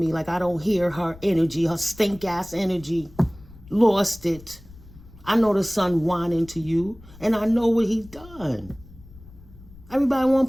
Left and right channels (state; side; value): noise; left; rumble, 21 dB below the sound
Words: like I don't hear her energy, her stink ass energy. Lost it. I know the son whining to you, and I know what he's done. Everybody